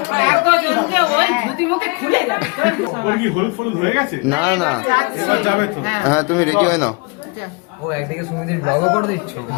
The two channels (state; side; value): quieter; right; 30.0 dB